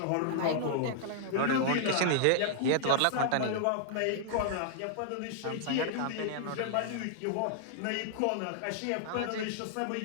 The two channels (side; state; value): both; different; correlation -0.01